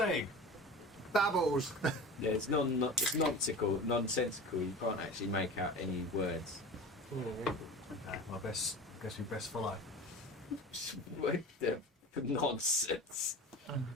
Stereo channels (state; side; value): normal; both; correlation 0.34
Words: Babbles. Yeah, it's nonsensical. You can't actually make out any words. Guess we best follow. What the nonsense?